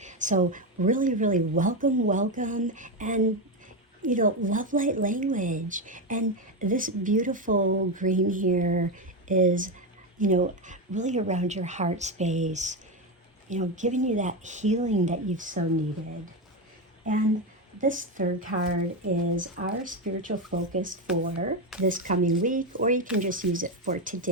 So really, really welcome, and love light language. And this beautiful green here is, really around your heart space, giving you that healing that you've so needed. And this third card is our spiritual focus for this coming week, or you can just use it for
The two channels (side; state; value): both; normal; correlation 0.11